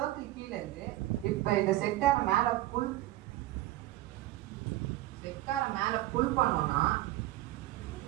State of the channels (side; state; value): left; quieter; 16.2 dB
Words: கீழே இருந்து இப்ப இந்த செக்டாரை மேல புல் பண்ணோம்னா